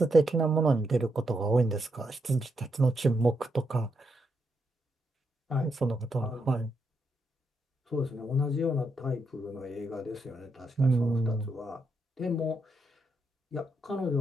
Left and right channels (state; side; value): normal; both; correlation 0.81